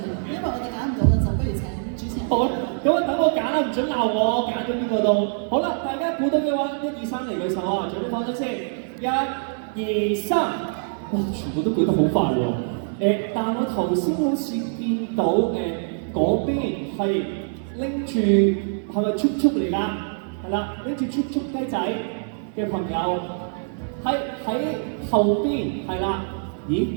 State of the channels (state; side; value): silent; left; 63 dB below the other